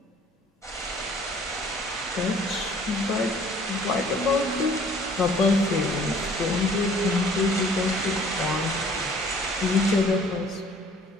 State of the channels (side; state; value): both; normal; correlation 0.55